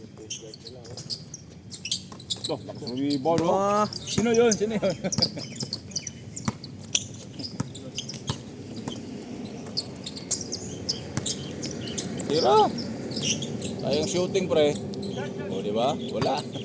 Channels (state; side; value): identical; both; correlation 1.00